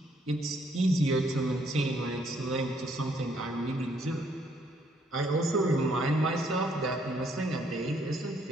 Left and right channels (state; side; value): normal; both; correlation 0.69